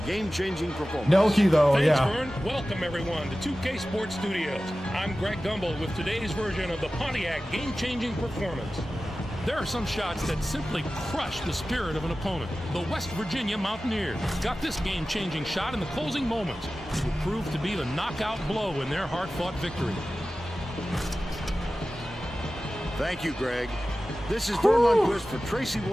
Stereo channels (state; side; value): normal; both; correlation 0.95